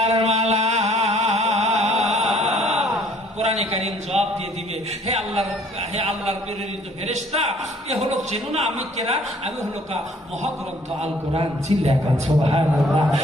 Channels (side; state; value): both; normal; correlation 0.58